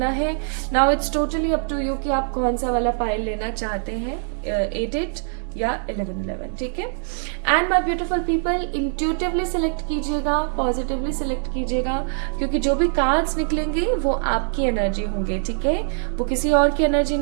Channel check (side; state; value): left; silent; 63 dB below the other